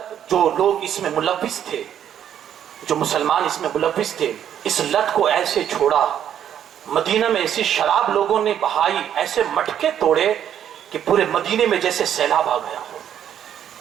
جو لوگ اس میں ملوث تھے، جو مسلمان اس میں ملوث تھے، اس لت کو ایسے چھوڑا۔ مدینہ میں ایسی شراب لوگوں نے بہائی، ایسے مٹکے توڑے کہ پورے مدینے میں جیسے سیلاب آ گیا ہو۔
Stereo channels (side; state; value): left; quieter; 9.8 dB